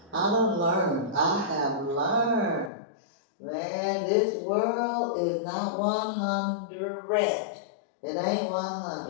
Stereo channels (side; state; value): right; drops out; at 2.7 s